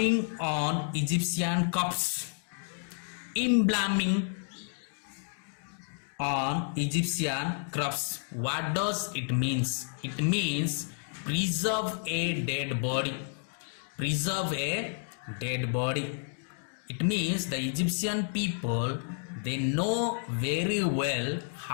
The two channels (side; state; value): right; silent; 57 dB below the other